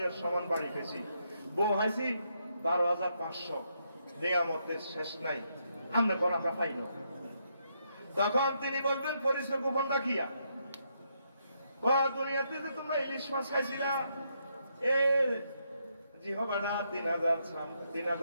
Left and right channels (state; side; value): inverted; both; correlation -0.78